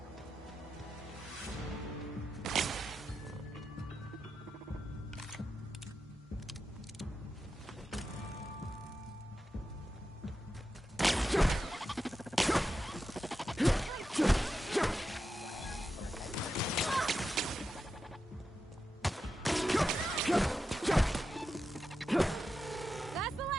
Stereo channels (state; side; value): normal; both; correlation 0.89